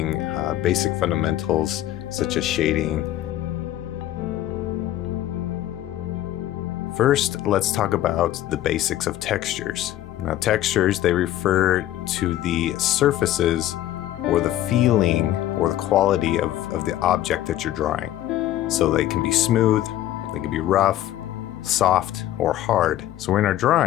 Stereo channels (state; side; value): quieter; right; 13.2 dB